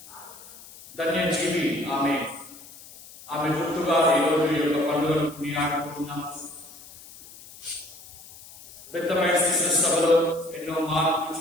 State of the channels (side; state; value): left; noise; hiss, 19 dB below the sound